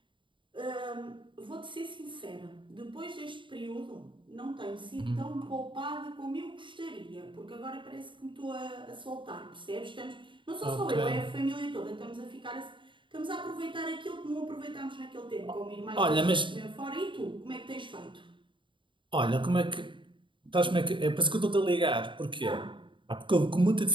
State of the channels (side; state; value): left; late; 0.24 ms